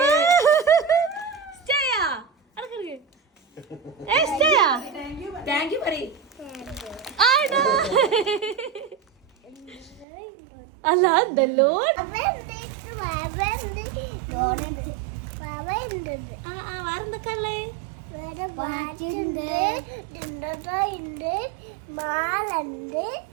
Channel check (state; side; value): drops out; left; at 10.1 s